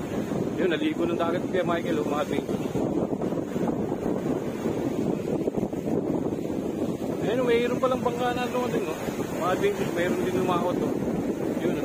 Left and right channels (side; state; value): both; identical; correlation 1.00